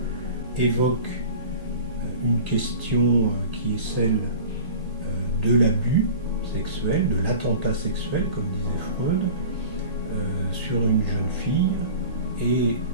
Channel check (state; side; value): inverted; both; correlation -0.38